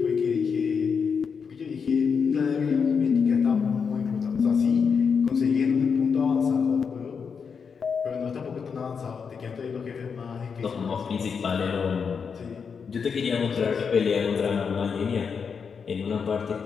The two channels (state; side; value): quieter; right; 6.1 dB